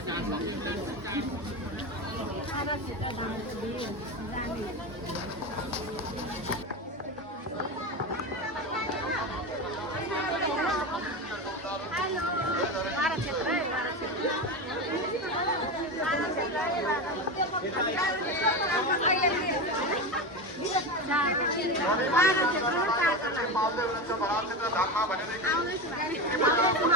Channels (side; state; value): both; normal; correlation 0.20